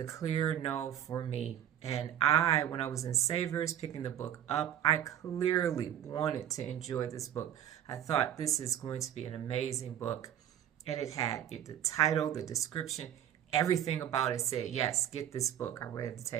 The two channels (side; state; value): left; quieter; 10.6 dB